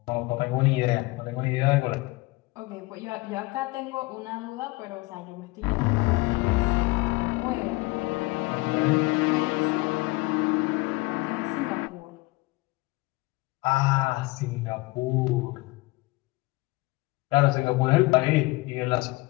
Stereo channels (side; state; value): right; quieter; 22.6 dB